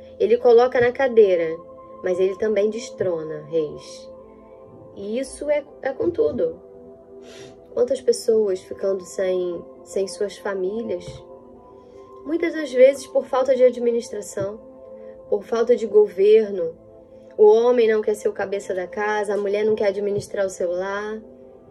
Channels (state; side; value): identical; both; correlation 1.00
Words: Ele coloca na cadeira, mas Ele também destrona reis. E isso é com tudo. Quantas pessoas ficando sem suas famílias, muitas das vezes por falta de administração, por falta de governo. O homem não quer ser o cabeça da casa, a mulher não quer administrar o seu lar,